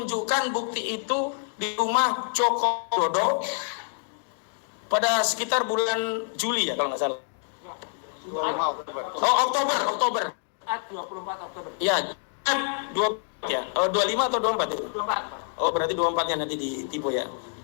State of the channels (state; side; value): silent; right; 60 dB below the other